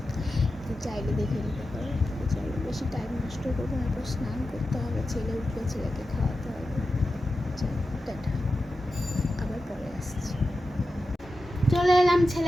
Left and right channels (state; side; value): normal; both; correlation 0.92